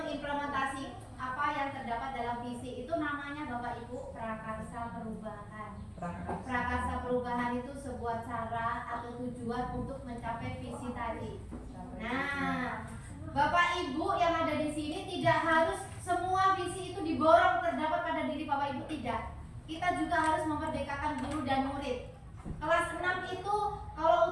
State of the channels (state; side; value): identical; both; correlation 1.00